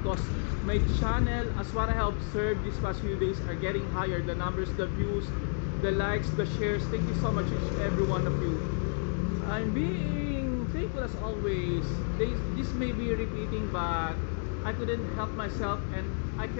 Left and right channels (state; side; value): silent; right; digital silence